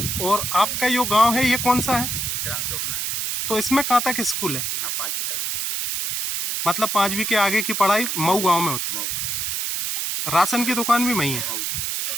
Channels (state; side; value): noise; right; hiss, 1 dB below the sound